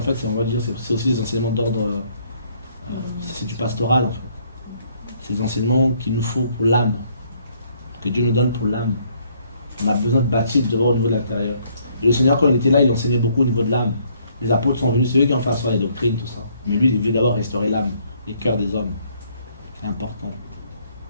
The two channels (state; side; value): inverted; both; correlation -0.66